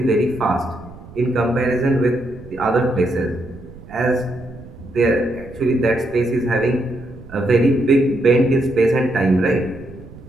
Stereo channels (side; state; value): right; noise; rumble, 18 dB below the sound